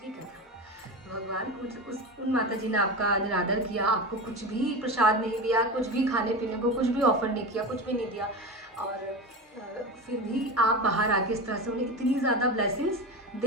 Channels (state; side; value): normal; both; correlation 0.24